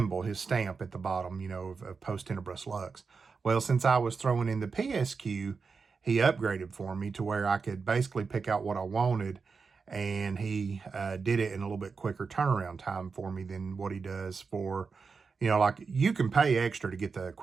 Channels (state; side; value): quieter; left; 5.0 dB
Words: his stamp at the bottom, of Post Tenebras Lux. Well, since I was throwing in the PSQ, he upgraded for me to where I could basically pick out what I wanted, and he did it in a little bit quicker turnaround time for me than what he does for, like you can pay extra to get the